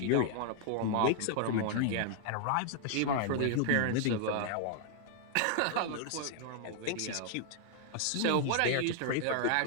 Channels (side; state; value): both; different; correlation 0.00